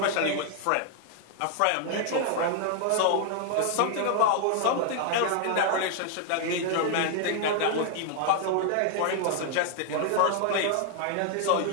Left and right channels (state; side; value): different; both; correlation 0.00